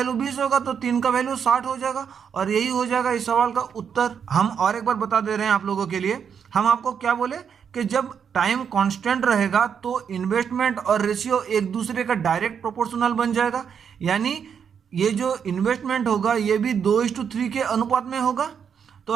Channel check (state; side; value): quieter; left; 7.3 dB